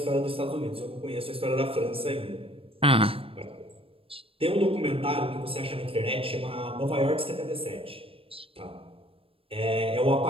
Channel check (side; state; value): left; late; 0.27 ms